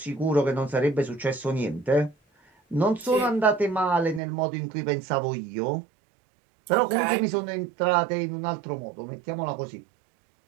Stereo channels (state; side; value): drops out; left; at 4.2 s